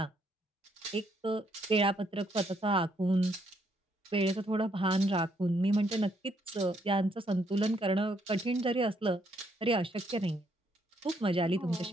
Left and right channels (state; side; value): normal; both; correlation 0.71